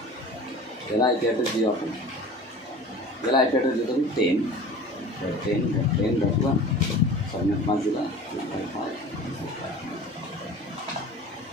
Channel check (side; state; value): both; normal; correlation 0.40